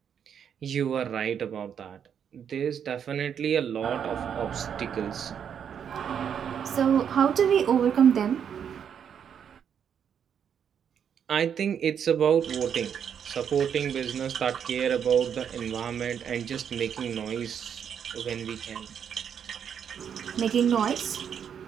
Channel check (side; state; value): left; quieter; 8.1 dB